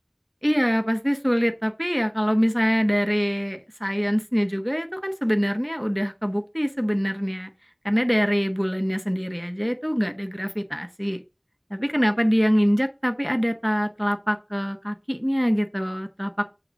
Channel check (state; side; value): identical; both; correlation 1.00